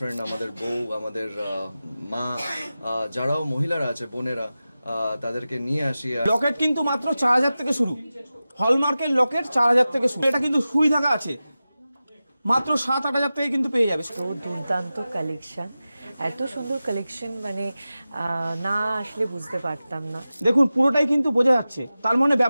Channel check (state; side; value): inverted; both; correlation -0.95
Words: আমাদের বউ, আমাদের মা, যারাও মহিলারা আছে, বোনেরা, তাদেরকে নিয়ে আসি। লকেট কিন্তু মাত্র 4,000 থেকে শুরু, হলমার্কের লকেট 4,000 থেকে শুরু। এটা কিন্তু সুই ধাগা আছে, মাত্র 7-8 হাজার থেকে কিন্তু পেয়ে যাবে। তো দুর্দান্ত কালেকশন, এত সুন্দর কালেকশন, মানে না আসলে বুঝতে পারতাম না। দেখুন পুরোটাই কিন্তু বোঝা যাচ্ছে, তার মানে